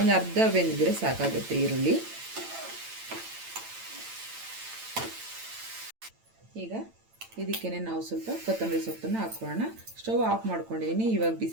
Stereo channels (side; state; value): left; late; 8.9 ms